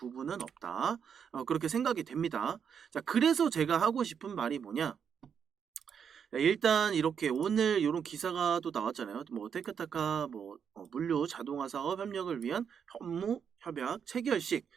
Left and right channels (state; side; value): quieter; left; 7.3 dB